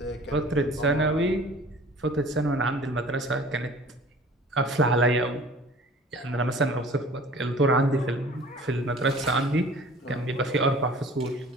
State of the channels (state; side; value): normal; both; correlation 0.47